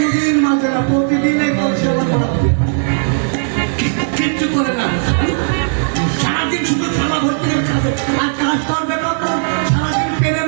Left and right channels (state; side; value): silent; left; 60 dB below the other